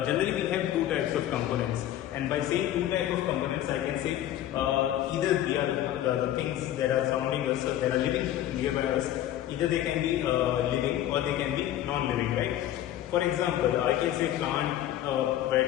Generally we have two types of components, and by saying two types of components, I can say either they are the things that are surrounding us, that are living nearby us, either they can be living or they can be non-living, right? For example, I can say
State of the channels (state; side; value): quieter; right; 12.5 dB